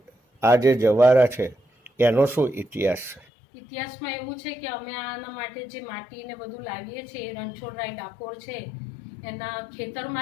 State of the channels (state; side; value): drops out; right; at 3.2 s